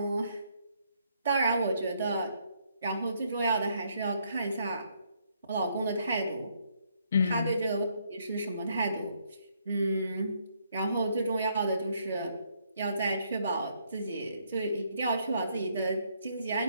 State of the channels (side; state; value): both; inverted; correlation -0.72